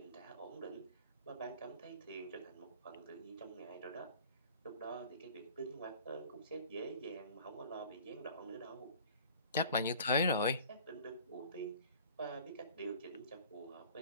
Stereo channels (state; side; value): inverted; both; correlation -0.47